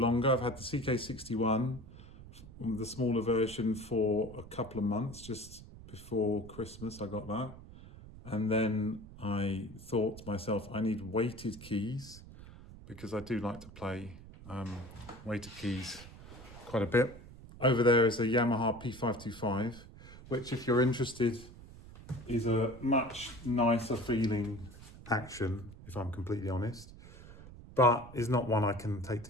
I've had the CK61, the smaller version, for a couple of months. Just before Christmas I got that, and then I thought to myself, I need weighted keys because I do like to play weighted keys quite a bit. Over there is a Yamaha P525, which, if you're interested, is a much nicer feeling action, if I'm completely honest, but is not one I can take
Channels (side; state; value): right; noise; rumble, 17 dB below the sound